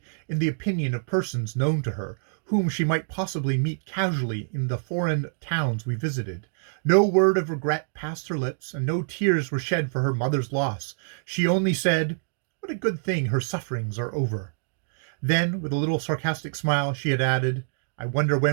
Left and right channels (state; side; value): silent; left; digital silence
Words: in the opinion of persons known to her, whom she might possibly meet casually in the foreign towns we visited. No word of regret passed her lips, and no tears were shed for her mother's loss. She only said, "What a good thing her sufferings are over." Then, with a little sarcastic smile, she had added, "I wonder